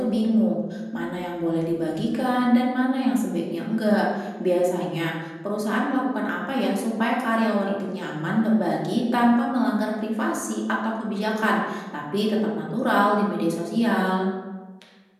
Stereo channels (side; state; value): both; identical; correlation 1.00